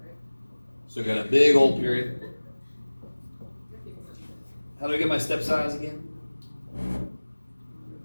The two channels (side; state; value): both; inverted; correlation -1.00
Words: So I got a big old period. How do I get my step size again?